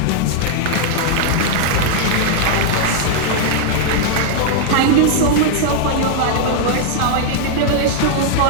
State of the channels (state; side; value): different; both; correlation 0.00